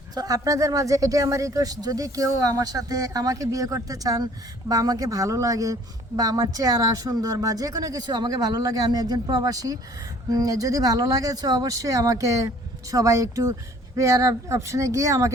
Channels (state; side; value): normal; both; correlation 0.54